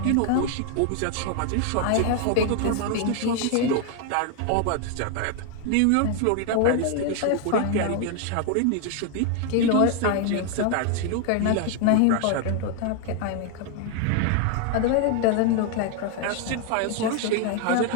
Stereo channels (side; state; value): both; different; correlation 0.00